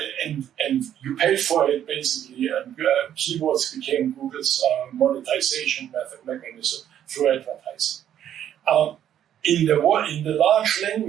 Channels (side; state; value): left; quieter; 10.4 dB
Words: you paid for it basically, and keywords became Google's monetization mechanism through advertising. In the large